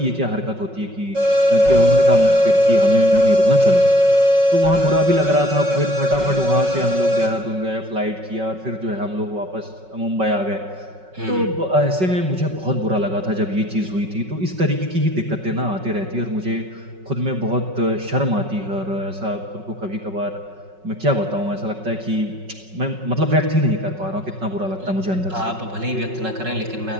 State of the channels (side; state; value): left; late; 5.4 ms